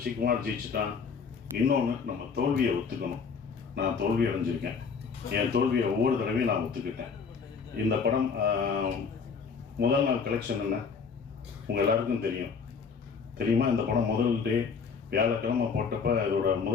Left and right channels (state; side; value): quieter; right; 5.7 dB